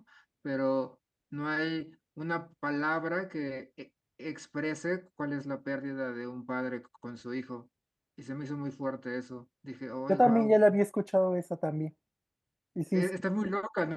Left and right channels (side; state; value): both; identical; correlation 1.00